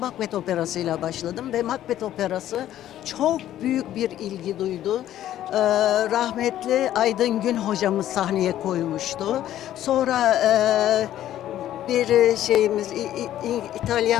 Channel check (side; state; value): right; quieter; 12.4 dB